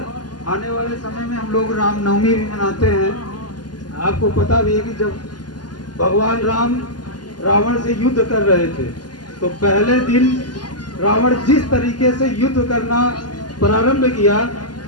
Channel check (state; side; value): late; right; 0.70 ms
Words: आने वाले समय में हम लोग रामनवमी भी मनाते हैं। आपको पता भी है कि जब भगवान राम रावण से युद्ध कर रहे थे तो पहले दिन रावण जिस तरीके से युद्ध करना प्रारंभ किया,